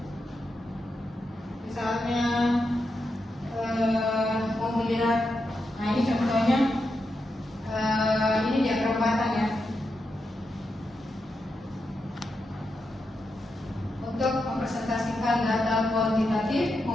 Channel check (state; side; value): normal; both; correlation 0.86